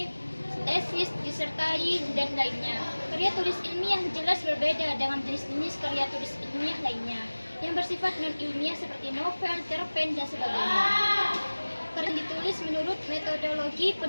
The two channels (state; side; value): inverted; both; correlation -1.00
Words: tesis, disertai, dan lainnya. Karya tulis ilmiah jelas berbeda dengan jenis-jenis karya tulis ilmiah lainnya yang bersifat non-ilmiah seperti novel, cerpen, dan sebagainya. Karya ditulis menurut metodologi